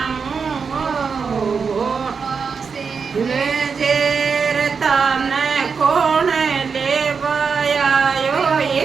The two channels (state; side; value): quieter; left; 5.6 dB